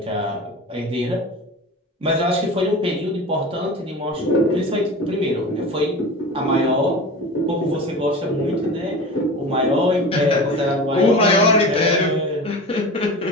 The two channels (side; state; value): both; normal; correlation 0.32